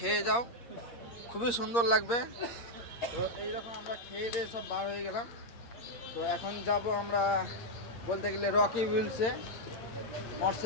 যাও, খুবই সুন্দর লাগবে। তো এইরকম আমরা খেয়ে দিয়ে সব বার হয়ে গেলাম। তো এখন যাব আমরা বলতে গেলে রকি উইলসে,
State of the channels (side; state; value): right; late; 8.5 ms